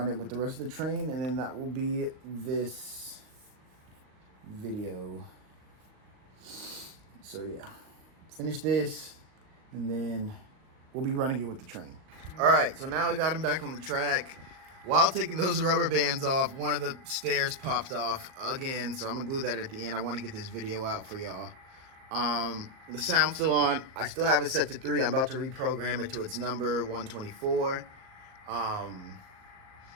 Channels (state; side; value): late; left; 38 ms